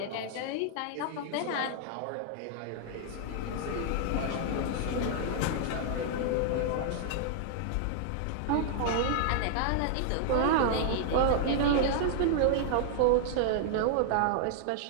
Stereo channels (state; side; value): different; both; correlation -0.01